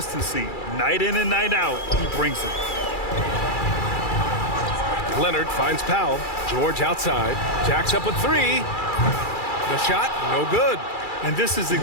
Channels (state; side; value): late; right; 2.3 ms